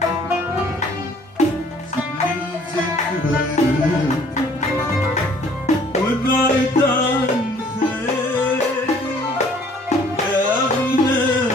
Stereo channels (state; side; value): normal; both; correlation 0.57